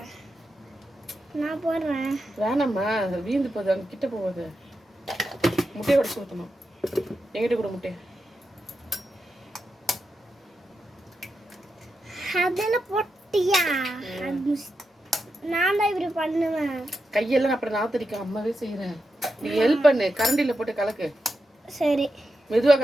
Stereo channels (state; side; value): normal; both; correlation 0.88